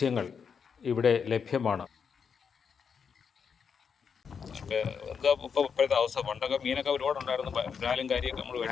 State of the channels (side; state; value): right; quieter; 6.5 dB